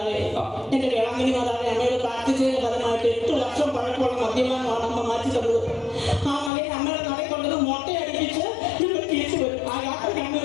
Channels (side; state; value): right; drops out; at 6.5 s